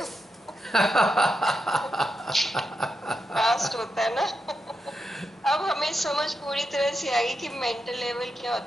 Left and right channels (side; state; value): both; normal; correlation 0.86